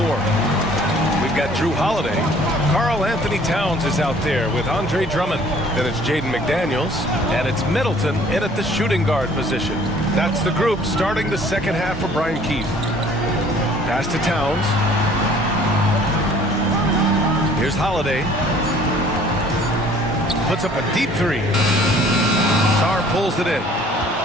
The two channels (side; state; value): both; normal; correlation 0.55